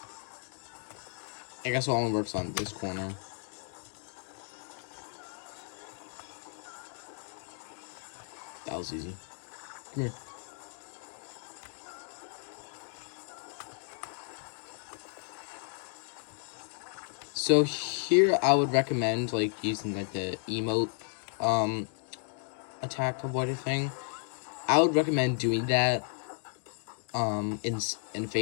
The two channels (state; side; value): silent; right; 56 dB below the other